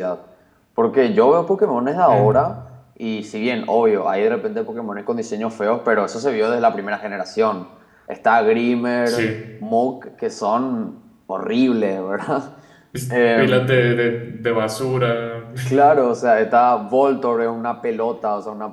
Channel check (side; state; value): both; identical; correlation 1.00